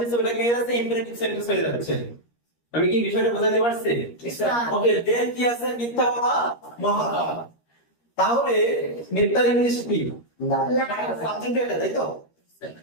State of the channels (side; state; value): right; late; 13 ms